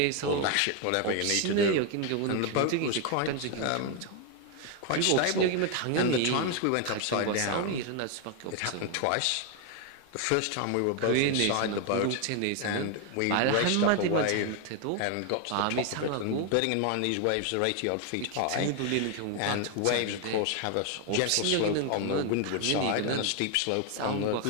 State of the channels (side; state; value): both; different; correlation 0.01